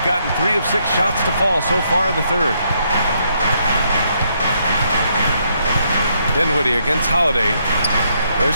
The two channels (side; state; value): both; inverted; correlation -0.74